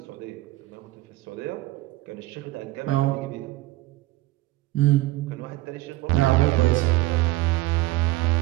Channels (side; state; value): left; quieter; 18.5 dB